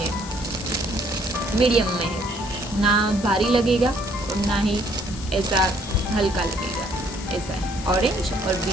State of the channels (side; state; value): left; noise; hiss, 13 dB below the sound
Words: मीडियम में है, ना भारी लगेगा और ना ही ऐसा हल्का लगेगा, ऐसा है। ऑरेंज और